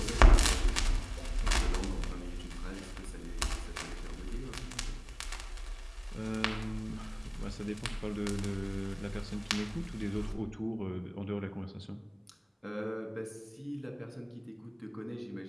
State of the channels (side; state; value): both; identical; correlation 1.00